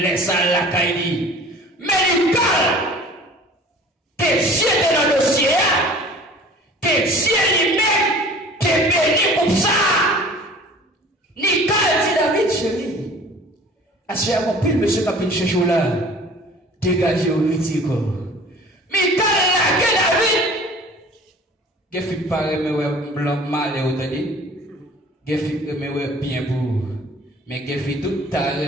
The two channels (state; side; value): normal; both; correlation 0.46